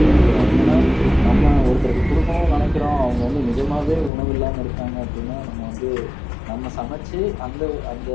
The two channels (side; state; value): right; drops out; at 4.1 s